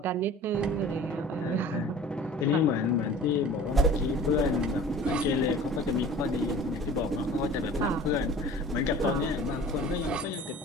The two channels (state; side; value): normal; both; correlation 0.44